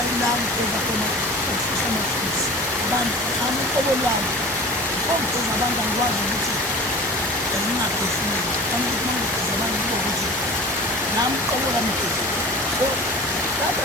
la ngigeza khona ukufisa amaphilisi abantu nami uqobo lwami ngigeza abantu angikwazi ukuthi ngingaphefumuli nami ukuthi mangigeza abantu kube ukuthi nami uqobo lwami ngigeza so lapha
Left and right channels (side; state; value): both; normal; correlation 0.38